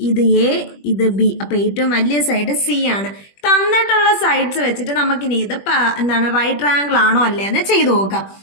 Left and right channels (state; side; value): late; right; 21 ms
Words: ഇത് A, ഇത് B. അപ്പൊ ഏറ്റവും വലിയ സൈഡ് C ആണ്. തന്നിട്ടുള്ള സൈഡ്സ് വെച്ചിട്ട് നമുക്കിനി ഇത് എന്താണ് റൈറ്റ് ട്രയാങ്കിൾ ആണോ അല്ലേ എന്ന് ചെയ്തു നോക്കാം.